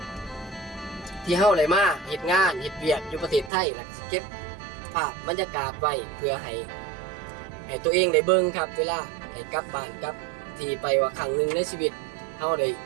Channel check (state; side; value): drops out; left; at 3.5 s